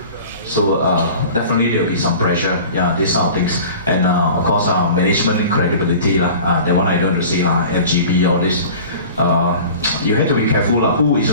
So definitely there will be some pressure, yeah, these sort of things. And of course, management credibility, that one I don't want to say, LGB, all this. You have to be careful who is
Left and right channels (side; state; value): both; inverted; correlation -0.41